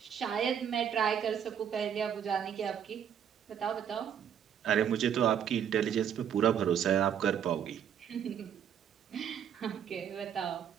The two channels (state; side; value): quieter; left; 8.7 dB